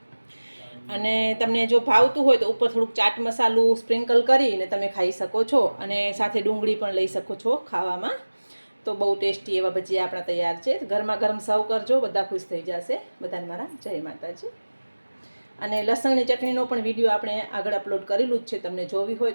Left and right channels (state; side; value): inverted; both; correlation -1.00